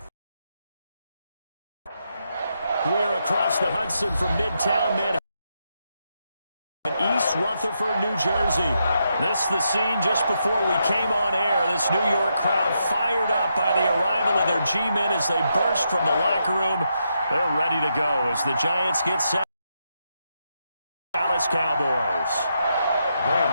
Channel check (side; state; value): both; inverted; correlation -0.82